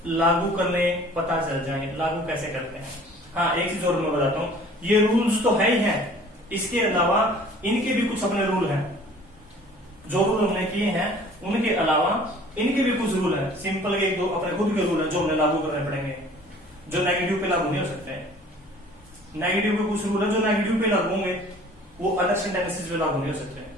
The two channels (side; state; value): both; normal; correlation 0.50